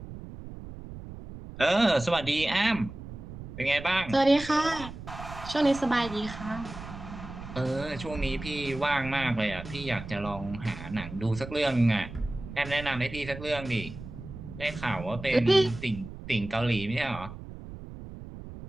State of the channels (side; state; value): right; noise; rumble, 12 dB below the sound